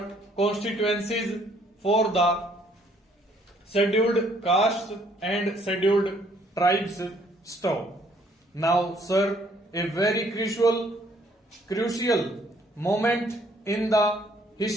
constituencies for the scheduled castes and scheduled tribes. Stop. Now, sir, a very crucial moment in the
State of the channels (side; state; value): both; normal; correlation 0.64